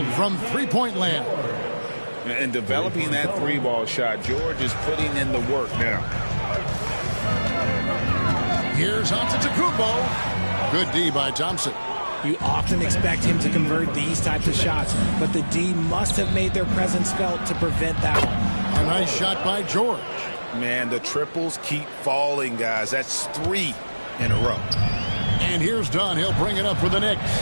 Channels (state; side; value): inverted; both; correlation -1.00